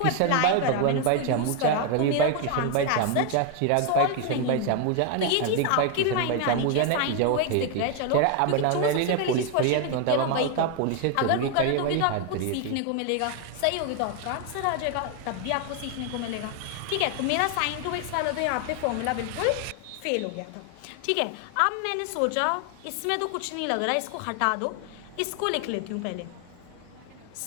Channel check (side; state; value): both; different; correlation 0.01